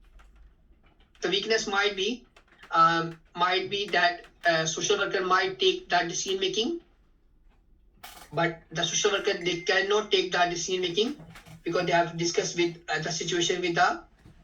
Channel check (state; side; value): identical; both; correlation 1.00